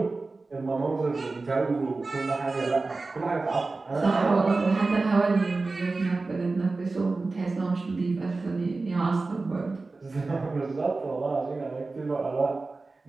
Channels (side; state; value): left; quieter; 3.6 dB